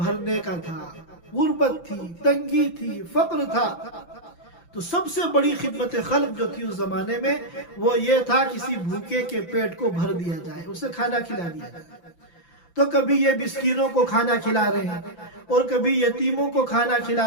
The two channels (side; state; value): right; late; 5.9 ms